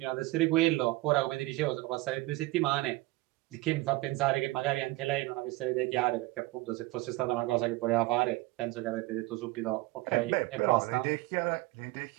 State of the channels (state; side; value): quieter; left; 20.2 dB